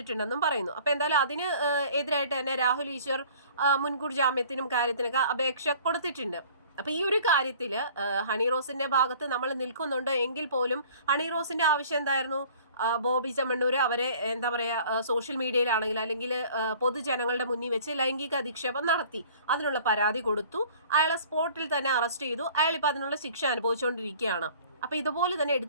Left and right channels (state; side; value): inverted; both; correlation -0.50